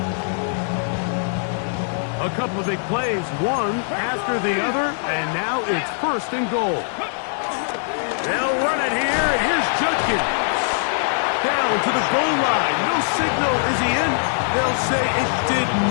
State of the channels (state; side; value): silent; right; 64 dB below the other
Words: A couple of big plays, one after the other, and now it's first and goal. They'll run it here, and here's Judkins. Down to the goal line. No signal. Is he in? They'll say it did